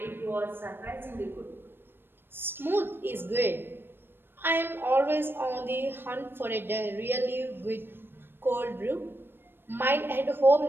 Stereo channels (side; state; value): left; late; 0.10 ms